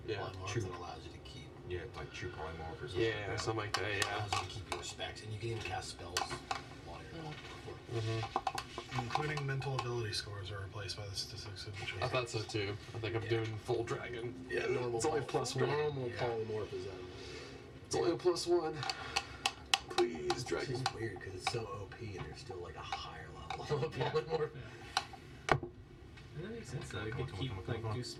Yeah. polymorph True. that allows you to keep Yeah, like true polymorph or something. Yeah, something like that, yeah. allows you to keep your specs, and you can even cast spells while you're including mental ability scores are replaced by the statistics of the choice. I thought so too. I think I'm doing full dragon. Yeah, normal. It's only plus one. Normal polymorph is It's only a +1. Please, It's dragon. just weird because it's so OP and there's still like a higher level of polymorph. That makes sense though. You Come on, could come on, keep come on, like come on. do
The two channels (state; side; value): identical; both; correlation 1.00